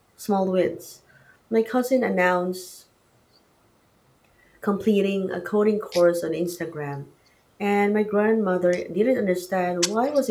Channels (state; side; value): identical; both; correlation 1.00